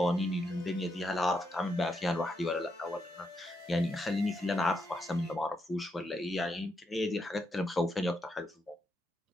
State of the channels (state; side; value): normal; both; correlation 0.81